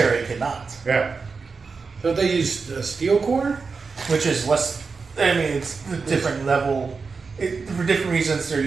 cannot, Yeah. Don't they use steel core? which is less. I mean, it's a different level. For different reasons, they're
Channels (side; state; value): left; quieter; 4.8 dB